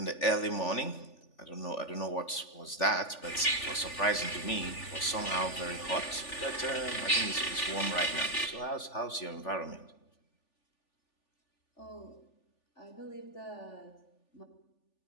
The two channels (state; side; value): late; right; 3.4 ms